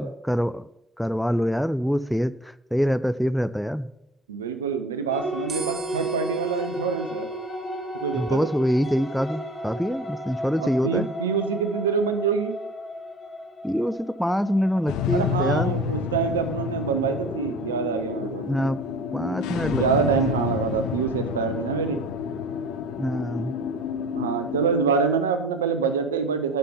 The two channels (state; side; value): normal; both; correlation 0.42